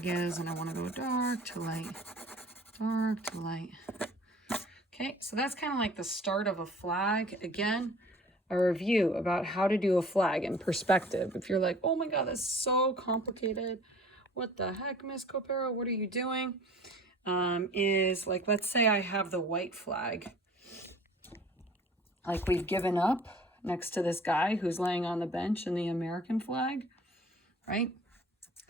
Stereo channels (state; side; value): normal; both; correlation 0.47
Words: is, and I want to go dark to light, dark to light. Okay, so that's kind of like the start of a flag. Again, a review about how to do a flag in perspective. If you're like, oh my God, that's so complicated. What the heck, Miss Copero, what are you doing? Is like, let's say I have the white flag. Like we've given up next to this guy who's laying on the bench in the American flag, right?